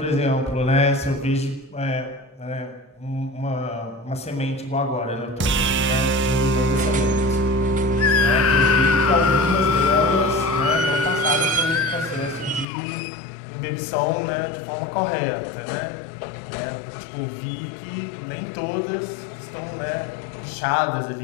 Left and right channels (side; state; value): right; drops out; at 12.7 s